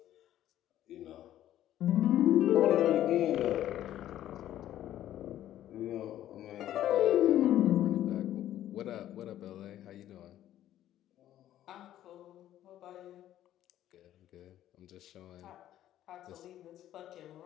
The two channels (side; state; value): right; quieter; 12.5 dB